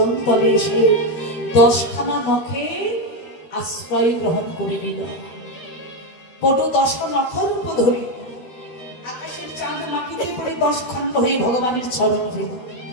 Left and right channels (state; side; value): late; right; 12 ms